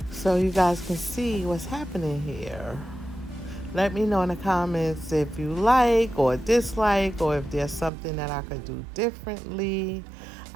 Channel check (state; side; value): drops out; left; at 7.9 s